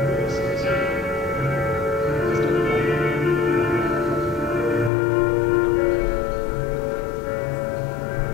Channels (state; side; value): drops out; right; at 4.9 s